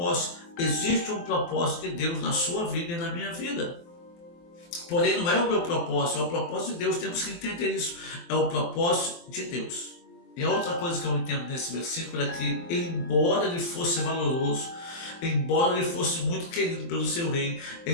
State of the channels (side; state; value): right; late; 23 ms